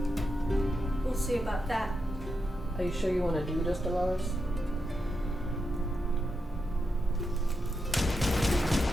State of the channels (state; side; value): normal; both; correlation 0.86